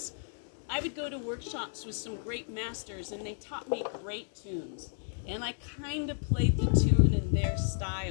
I would go to workshops with some great masters and they taught me great tunes. And I kind of played the tune in their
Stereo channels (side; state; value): right; silent; digital silence